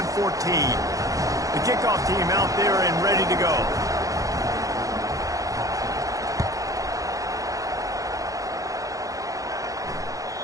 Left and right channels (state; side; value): late; left; 0.17 ms